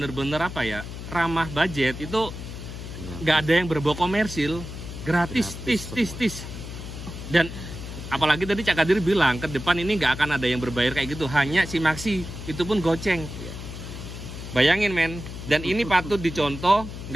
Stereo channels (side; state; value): left; noise; hum, 10 dB below the sound